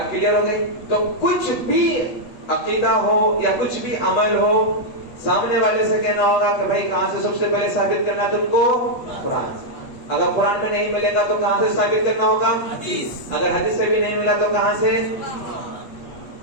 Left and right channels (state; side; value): late; right; 8.3 ms